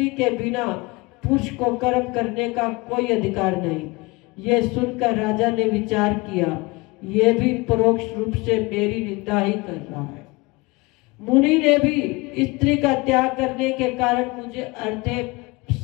के बिना पुरुष को कर्म करने का कोई अधिकार नहीं। ये सुनकर राजा ने विचार किया, ये भी परोक्ष रूप से मेरी निंदा ही कर रहा है। मुनि ने भी स्त्री का त्याग करने के कारण मुझे अर्धे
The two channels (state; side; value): quieter; right; 24.4 dB